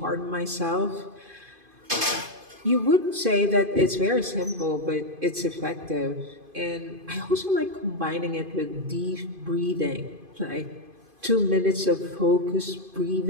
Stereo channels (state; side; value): late; left; 2.5 ms